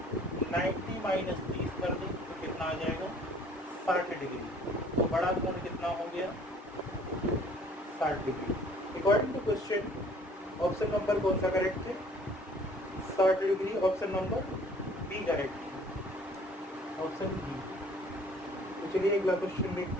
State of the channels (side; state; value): both; normal; correlation 0.54